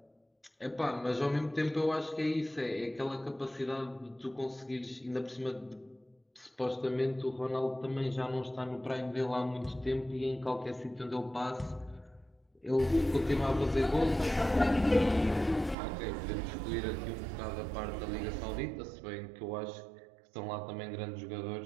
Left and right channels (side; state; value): left; drops out; at 15.8 s